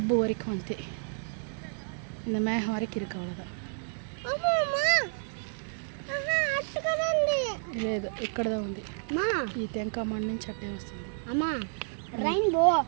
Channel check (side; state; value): left; silent; 58 dB below the other